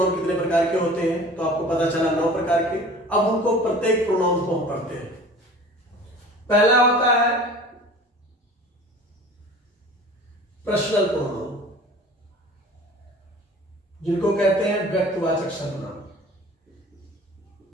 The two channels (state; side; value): normal; both; correlation 0.43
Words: कितने प्रकार के होते हैं। तो आपको पता चला 9 प्रकार के। अब उनको प्रत्येक प्रोनाउन को हम पढ़ते हैं। पहला होता है पर्सनल प्रोनाउन, जिनको कहते हैं व्यक्तिवाचक सर्वनाम,